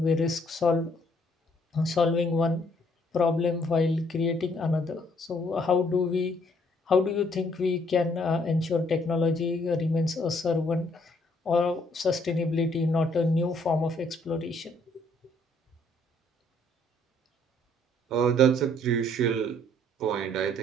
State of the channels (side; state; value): both; normal; correlation 0.66